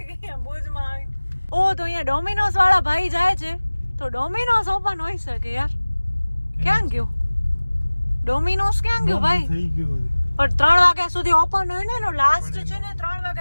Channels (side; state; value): both; inverted; correlation -1.00